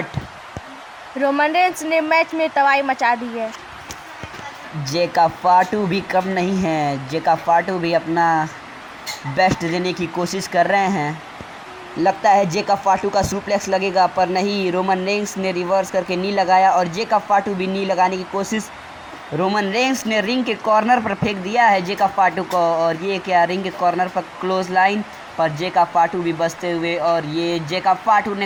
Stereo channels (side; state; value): both; identical; correlation 1.00